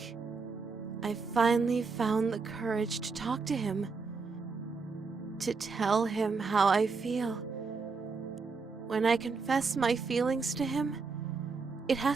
I finally found the courage to talk to him, to tell him how I feel. When I confess my feelings to him, it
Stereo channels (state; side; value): quieter; left; 4.6 dB